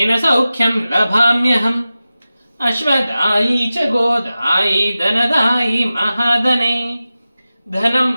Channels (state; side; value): inverted; both; correlation -0.95